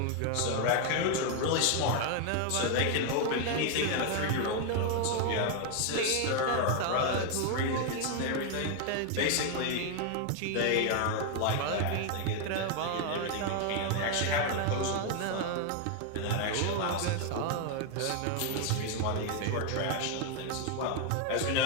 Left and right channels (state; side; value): different; both; correlation 0.01